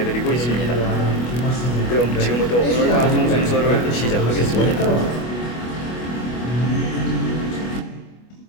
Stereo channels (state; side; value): late; right; 25 ms